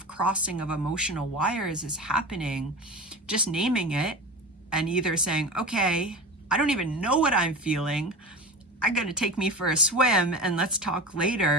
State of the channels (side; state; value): both; normal; correlation 0.31